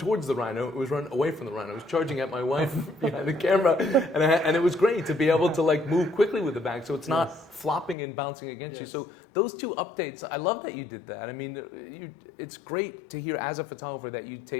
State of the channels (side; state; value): right; drops out; at 8.0 s